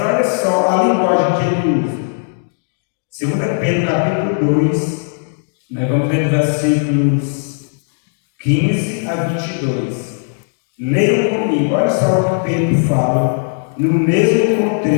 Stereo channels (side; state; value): right; silent; digital silence